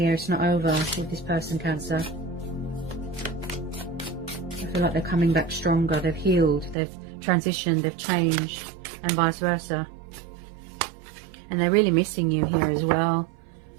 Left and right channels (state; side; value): drops out; left; at 6.8 s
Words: It's not over with this person, Cancer. I feel like they're coming back stronger. They've healed. They've transitioned. They've changed. And vice versa. And they're really missing you here as well.